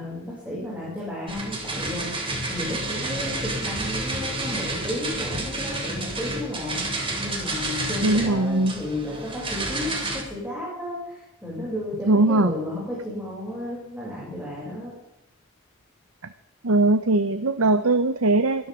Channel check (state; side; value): normal; both; correlation 0.23